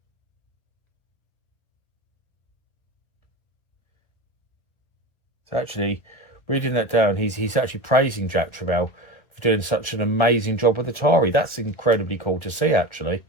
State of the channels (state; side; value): late; right; 1.4 ms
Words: actually, reading that down, he's actually praising Jack Tramiel for doing such an amazing job with Atari. That's incredibly cool to see, actually.